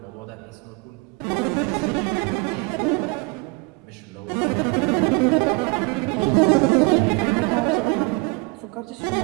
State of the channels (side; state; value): left; quieter; 26.8 dB